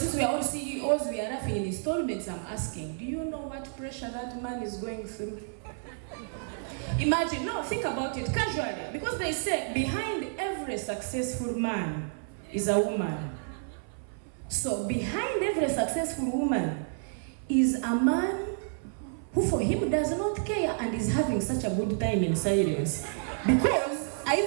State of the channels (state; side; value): silent; left; 58 dB below the other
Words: we are all CEOs, we are laughing in installments. I'm asking, do you know what pressure that man is going through? Imagine, no, think about it casually. Because they say behind every successful man is a woman. So behind every successful woman is a man who for him does not care and is having such a good time in silence. Because I